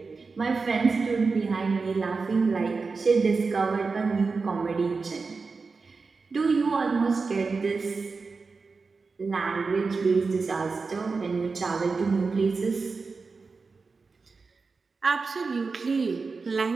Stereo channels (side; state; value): left; quieter; 4.4 dB